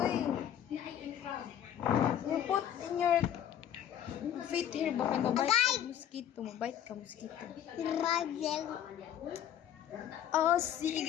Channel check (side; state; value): right; quieter; 10.3 dB